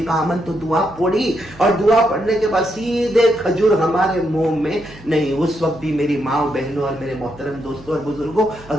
آمنت، دعا پڑھی اور دعا پڑھنے کے بعد سیدھے کھجور ہمارے منہ میں نہیں. اس وقت بھی میری ماں و بہنوں اور میرے محترم دوستوں اور بزرگوں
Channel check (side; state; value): right; noise; hum, 21 dB below the sound